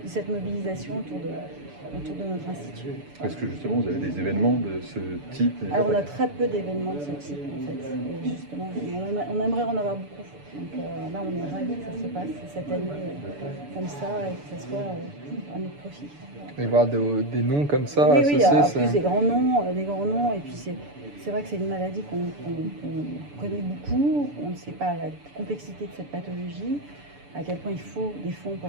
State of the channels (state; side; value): late; left; 6.9 ms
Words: de cette mobilisation autour de notre institut. Est-ce que justement vous avez des événements de ce type? Alors on a très peu d'événements de ce type en fait. Et justement, on aimerait en avoir beaucoup. Donc là on est ravis que ça se passe cette année comme ça et que ça soit à notre profit. Voilà. Et voir des noms comme ça oui, associés, en plus des grands noms et puis c'est vrai que c'est une maladie qu'on connaît beaucoup. On ne sait pas la complexité de cette pathologie, à quel point il faut des fonds pour